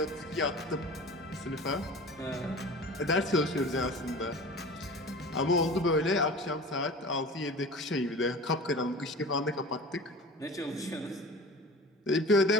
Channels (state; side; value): normal; both; correlation 0.38